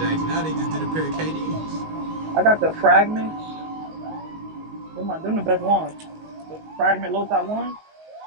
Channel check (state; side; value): late; left; 19 ms